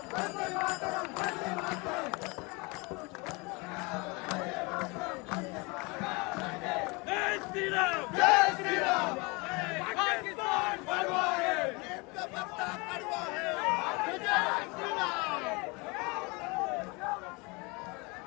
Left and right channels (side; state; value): right; quieter; 27.6 dB